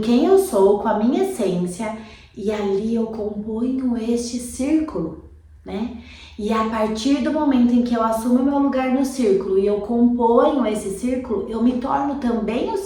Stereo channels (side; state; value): both; identical; correlation 1.00